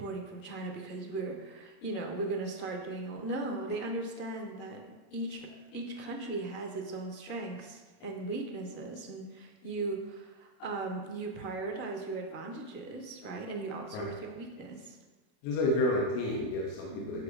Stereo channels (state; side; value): late; right; 28 ms